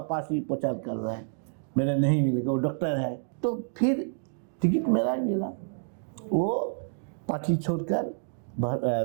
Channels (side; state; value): left; silent; digital silence